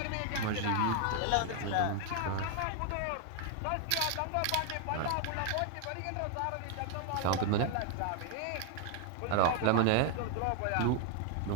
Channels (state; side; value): different; both; correlation 0.00